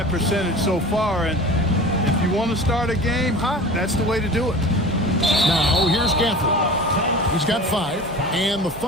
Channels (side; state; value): both; normal; correlation 0.37